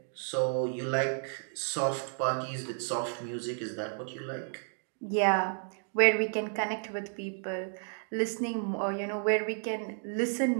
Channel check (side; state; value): left; silent; 56 dB below the other